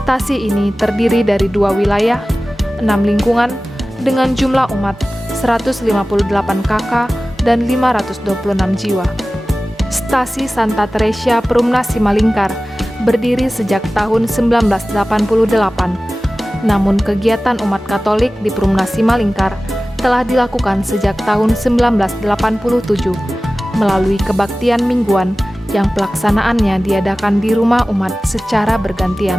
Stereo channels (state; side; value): normal; both; correlation 0.96